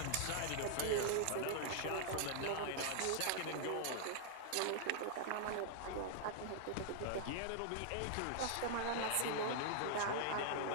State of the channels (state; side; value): different; both; correlation -0.01